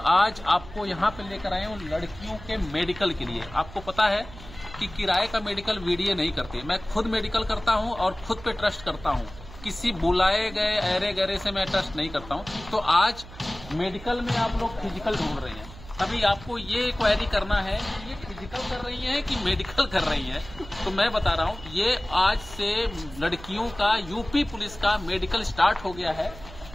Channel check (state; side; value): noise; right; hum, 16 dB below the sound